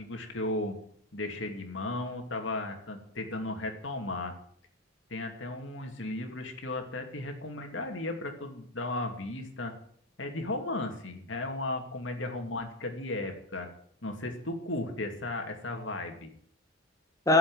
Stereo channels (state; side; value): normal; both; correlation 0.16